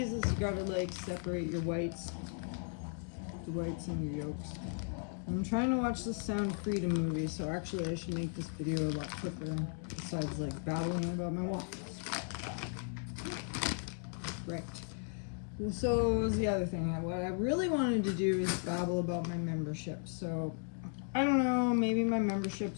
is you gotta like separate your whites, the whites and your yolks. I'm trying to watch the Sound Freedom movie, so actually I should make this video a lot quicker besides like babbling about my waffles. Right. Well, so what was the other thing? What I really wanted to do is babble about my membership. So, I don't know, maybe my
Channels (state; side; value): silent; right; 54 dB below the other